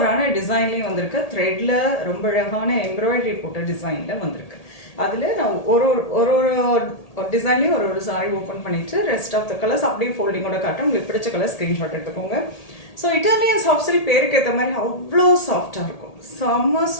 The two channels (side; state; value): right; late; 1.8 ms